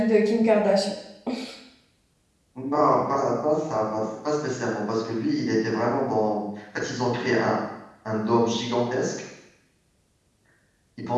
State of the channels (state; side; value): identical; both; correlation 1.00